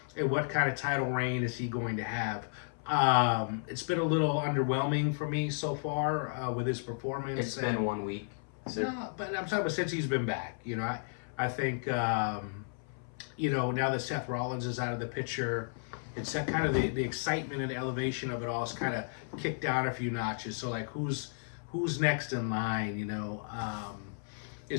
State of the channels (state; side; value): silent; right; 56 dB below the other